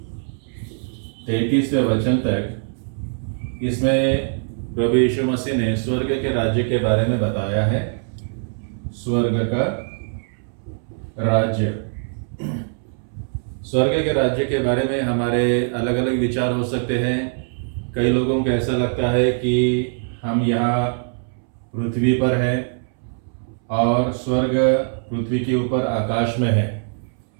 33वें वचन तक इसमें प्रभु यीशु मसीह ने स्वर्ग के राज्य के बारे में बताया है। स्वर्ग का राज्य, स्वर्ग के राज्य के बारे में हमारे अलग अलग विचार हो सकते हैं। कई लोगों को ऐसा लगता है कि हम यहाँ पृथ्वी पर हैं और स्वर्ग पृथ्वी के ऊपर आकाश में है,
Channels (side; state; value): left; silent; 64 dB below the other